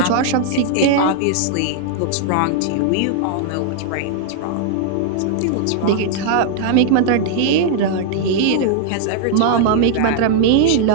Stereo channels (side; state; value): both; different; correlation -0.01